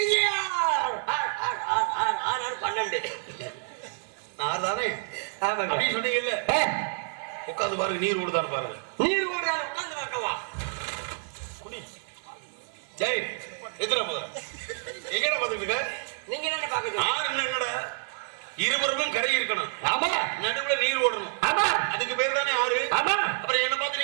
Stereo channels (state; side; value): silent; left; 57 dB below the other